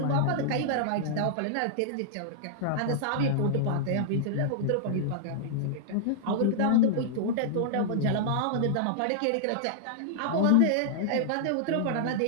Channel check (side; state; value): both; different; correlation -0.01